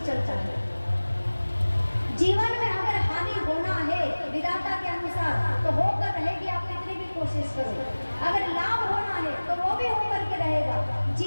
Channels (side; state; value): both; inverted; correlation -1.00